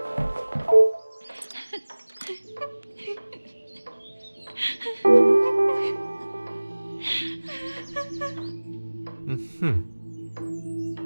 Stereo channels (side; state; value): both; inverted; correlation -1.00